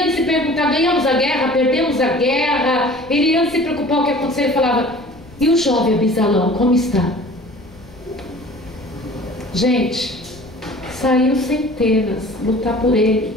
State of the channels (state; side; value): noise; left; rumble, 23 dB below the sound